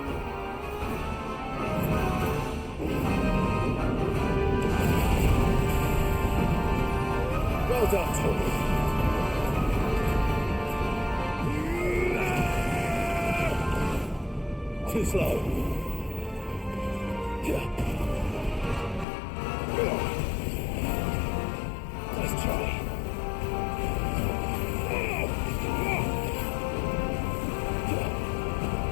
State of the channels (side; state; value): right; drops out; at 19.1 s